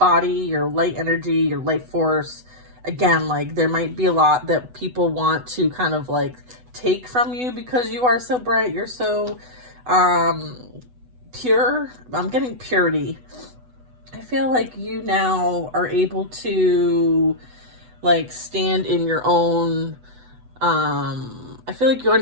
your light energy, your light force. Again, like there might be a lot that people want to kind of like take from you because you are so bright. You're so pure. I'm getting purity. I feel like you now are able to like stand in your own I feel like you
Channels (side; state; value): left; late; 8.0 ms